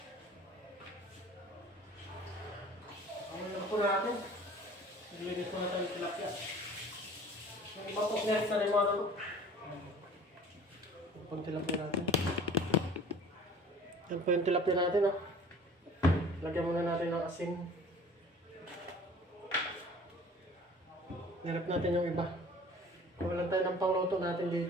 Ano na po natin? Nilinis po natin yung tilapia. Yung iba po next na rin mga toto. Yung pang tilapia natin. Yan po yung tilapia natin oh. Lagyan muna natin ng asin. Hirap natin yung iba. Walang tayo ng pangluto natin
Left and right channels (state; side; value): normal; both; correlation 0.47